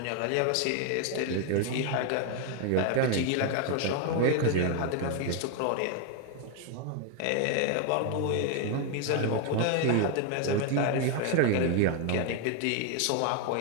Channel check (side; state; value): both; different; correlation 0.01